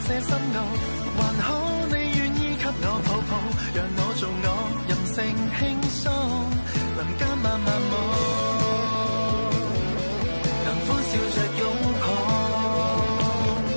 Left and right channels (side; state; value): both; inverted; correlation -1.00